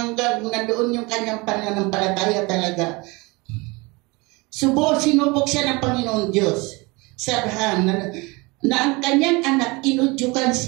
nandoon yung kanyang pananampalataya talaga. Sinubok siya ng Panginoon Diyos sa Abraham na ang kanyang anak inudyukan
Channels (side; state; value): left; quieter; 25.5 dB